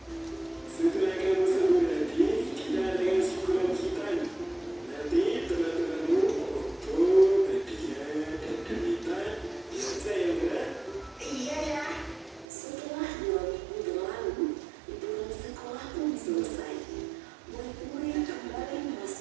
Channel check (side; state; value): left; drops out; at 12.5 s